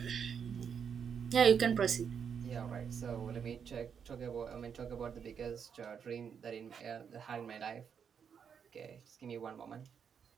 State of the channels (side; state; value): left; quieter; 7.2 dB